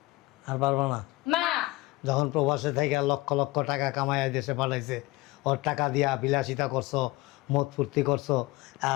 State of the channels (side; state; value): right; quieter; 20.3 dB